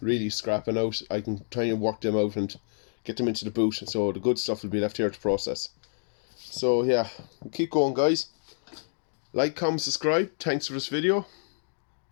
really scrapping out. I can try and work them out and get them into the boot, so the good stuff will be left here to process. So yeah, keep going, guys. Like, comment, subscribe. Thanks for this video,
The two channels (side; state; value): right; silent; digital silence